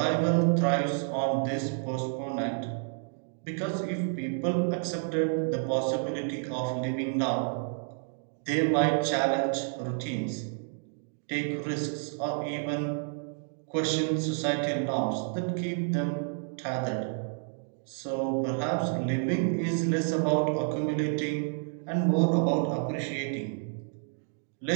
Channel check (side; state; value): left; silent; 58 dB below the other